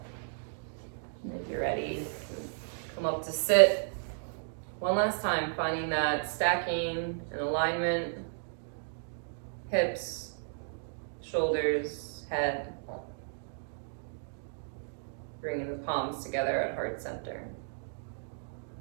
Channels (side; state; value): left; silent; digital silence